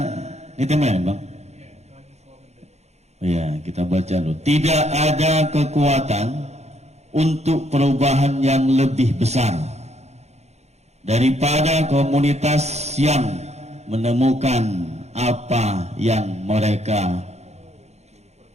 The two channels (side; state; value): left; late; 0.32 ms